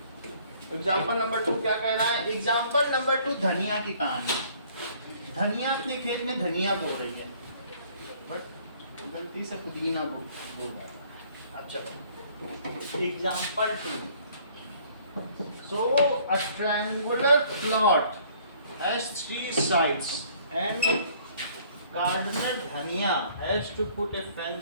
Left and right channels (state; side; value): inverted; both; correlation -0.58